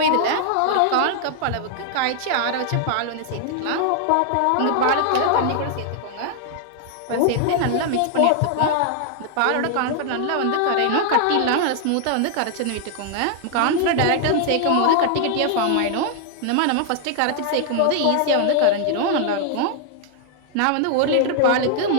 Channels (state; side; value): different; both; correlation 0.00